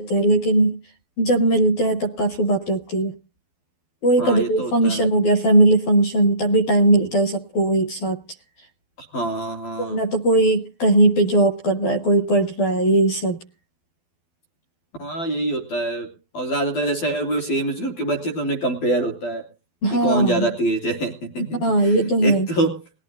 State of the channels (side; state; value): right; late; 12 ms